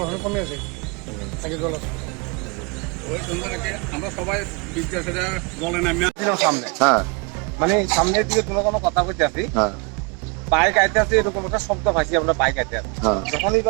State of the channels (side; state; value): left; quieter; 30.9 dB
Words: এখন কমে আছে আগে জল আছে ওই সন্ধ্যাটাকে আমরা সবাই বিদ্যাসে জলে নামিয়ে ছিলাম সামনে মানে সামনের দিকে কোনো কথা বলতে আসি বাইক আইতে আছে এরকম একটা শব্দ পাইছি আমরা বাইক আইতে আছি যখন